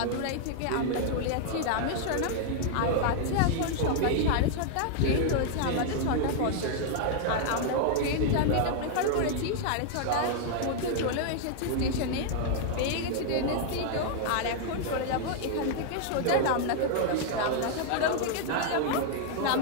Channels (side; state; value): both; different; correlation 0.00